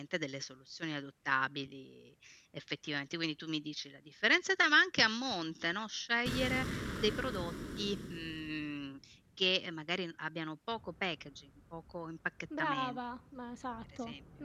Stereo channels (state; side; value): identical; both; correlation 1.00